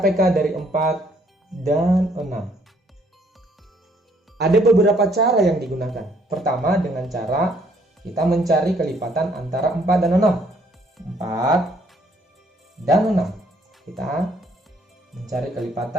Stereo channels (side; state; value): both; normal; correlation 0.65